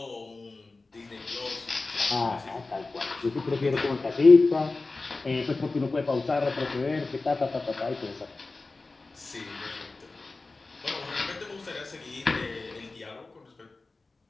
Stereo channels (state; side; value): quieter; right; 3.5 dB